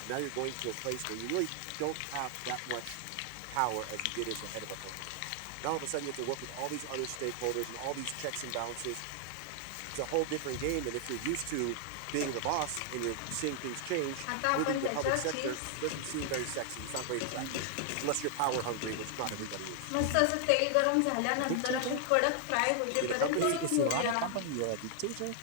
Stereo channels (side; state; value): both; different; correlation 0.00